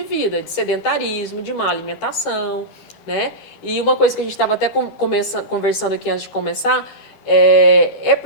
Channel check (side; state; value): right; late; 13 ms